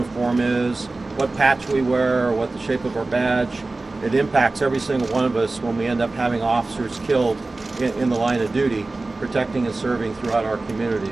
is, what patch we wear, or what the shape of our badge, it impacts every single one of us when we end up having officers killed in the line of duty, protecting and serving throughout our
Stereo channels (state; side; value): quieter; left; 3.3 dB